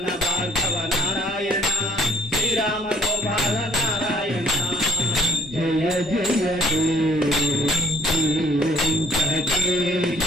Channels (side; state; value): both; normal; correlation 0.59